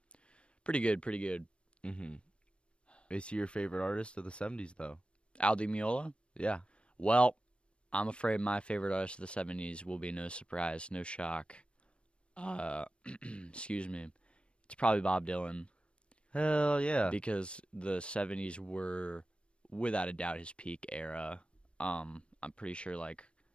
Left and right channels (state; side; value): late; right; 0.058 ms